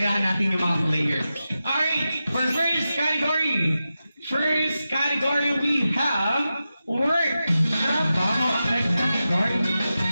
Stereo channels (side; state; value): both; inverted; correlation -0.92